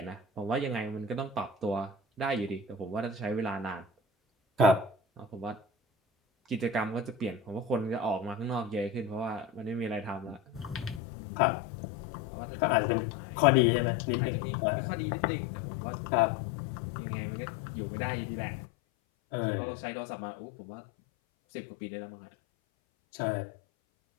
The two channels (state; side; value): drops out; right; at 11.0 s